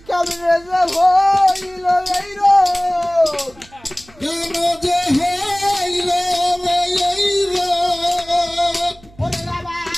কামড়ে যে হইল এই রোগ কেন যে হইল এই রোগ ওরে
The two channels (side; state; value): right; noise; hum, 26 dB below the sound